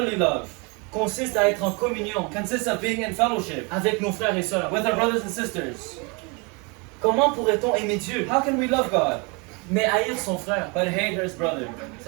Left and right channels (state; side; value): quieter; left; 30.7 dB